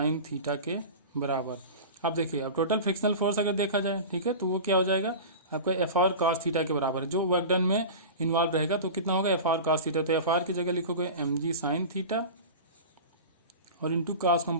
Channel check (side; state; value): both; inverted; correlation -0.31